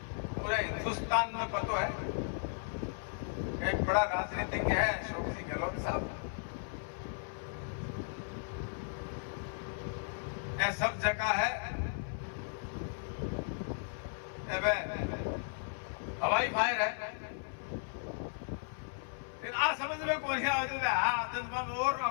पूरे हिंदुस्तान में पता है। एक बड़ा राजनीतिज्ञ है अशोक जी गहलोत साहब, ये सब जगह है हवाई फायर है, लेकिन आ समझ में कौन और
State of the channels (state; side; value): silent; right; 54 dB below the other